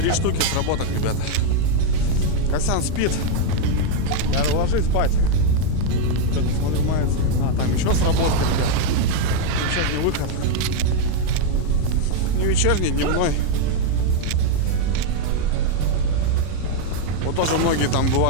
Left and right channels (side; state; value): both; different; correlation 0.00